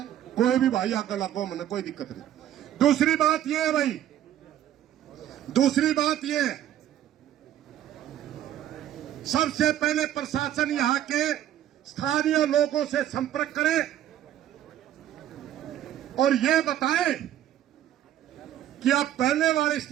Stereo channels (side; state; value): left; quieter; 11.7 dB